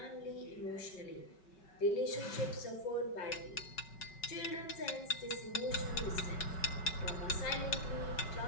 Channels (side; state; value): right; late; 5.4 ms